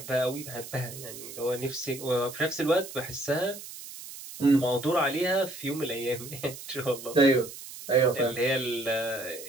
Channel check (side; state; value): right; noise; hiss, 13 dB below the sound